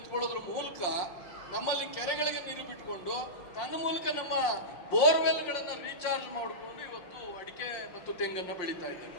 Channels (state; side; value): late; right; 5.7 ms